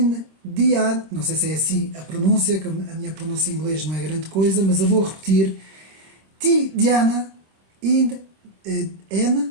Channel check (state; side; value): late; left; 26 ms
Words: não sei se é assim a pronúncia, que a minha pronúncia em inglês não é grande coisa, mas eu vou repetir. Tidjana N,